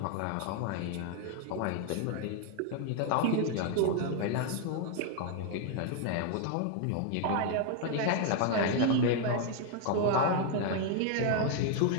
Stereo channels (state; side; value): different; both; correlation 0.00